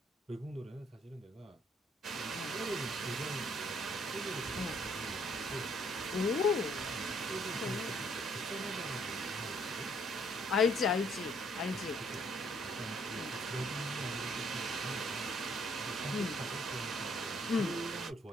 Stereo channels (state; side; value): normal; both; correlation 0.65